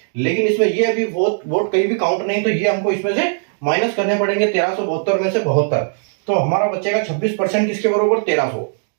लेकिन इसमें ये अभी वोट कहीं भी काउंट नहीं, तो ये हमको इसमें से माइनस करने पड़ेंगे 1372 में से 72। तो हमारा बचेगा 26% किसके बराबर 1300।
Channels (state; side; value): silent; left; 67 dB below the other